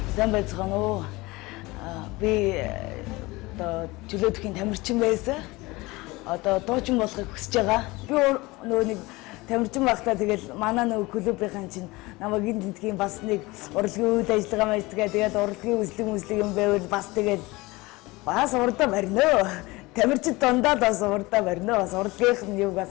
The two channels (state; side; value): quieter; right; 22.1 dB